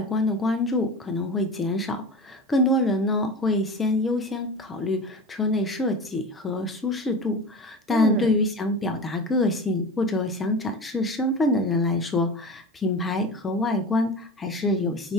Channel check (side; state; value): both; normal; correlation 0.30